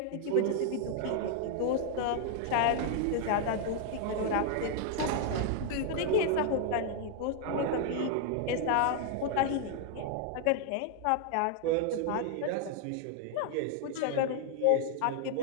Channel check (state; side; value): different; both; correlation 0.00